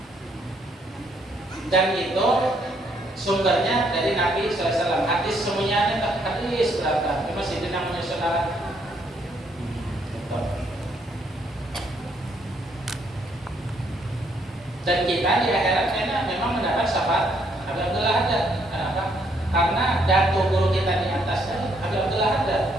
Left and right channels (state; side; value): normal; both; correlation 0.71